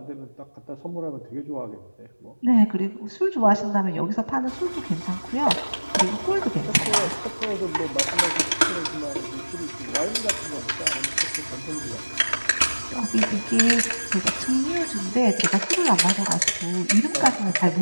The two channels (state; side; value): inverted; both; correlation -1.00